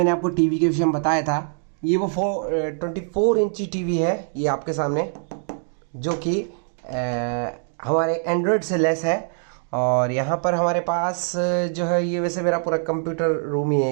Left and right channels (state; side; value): silent; left; 62 dB below the other